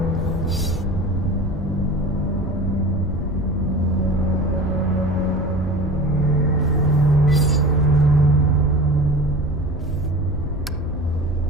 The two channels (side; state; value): both; normal; correlation 0.36